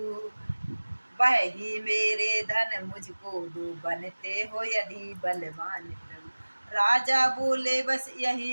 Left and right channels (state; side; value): inverted; both; correlation -1.00